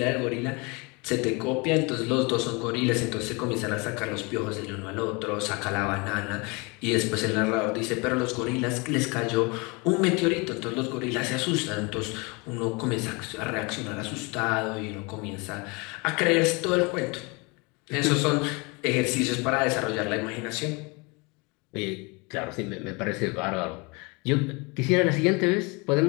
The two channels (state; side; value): quieter; right; 28.6 dB